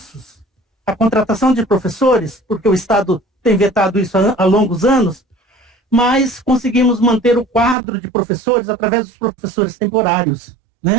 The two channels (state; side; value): drops out; left; at 7.8 s